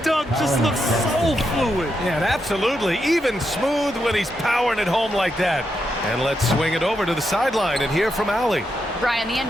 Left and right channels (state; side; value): normal; both; correlation 0.83